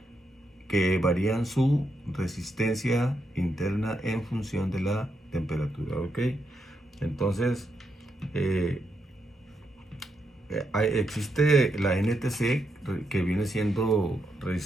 que varían su resistencia interna en función de la temperatura, ¿ok? Entonces, existe la NTC, que viene siendo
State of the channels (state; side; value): normal; both; correlation 0.81